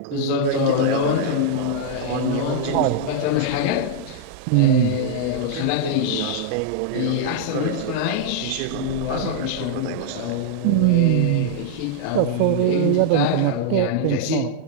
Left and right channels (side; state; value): both; different; correlation -0.01